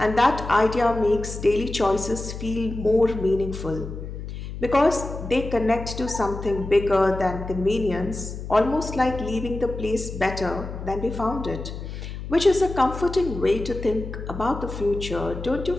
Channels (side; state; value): left; noise; hum, 9 dB below the sound